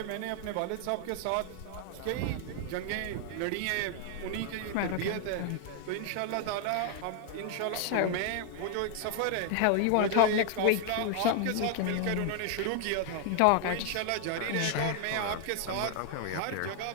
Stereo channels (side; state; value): both; different; correlation 0.00